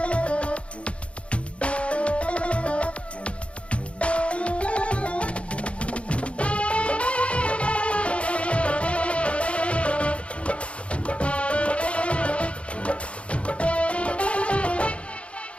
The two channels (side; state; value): right; late; 0.061 ms